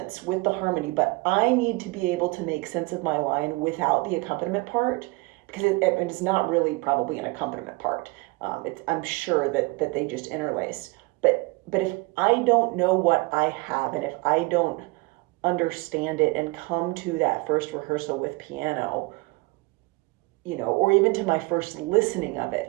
with the harmony, but I need to be able to make sense of my line without the accompaniment part, because it's not really probably an accompaniment part. I'm sure that they just interlace. But if I don't know what I have, and if I don't understand it and come to that first rehearsal with piano, or even to my first listening of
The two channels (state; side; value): quieter; left; 25.1 dB